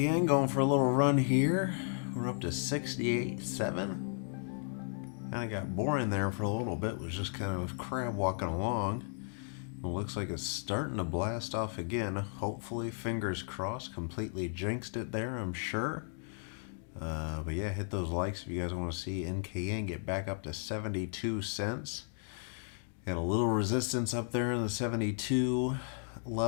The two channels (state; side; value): silent; right; 55 dB below the other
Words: going for a little run here. We're up to 68.7. Kind of got boring there for a little bit. Was just kind of crab walking along. It looks like it's starting to blast off again. Hopefully, fingers crossed, completely jinxed it there, I'm sure. But yeah, hit those likes if you guys want to see NKN get back up to 72 cents. Got a little resistance up there in the 72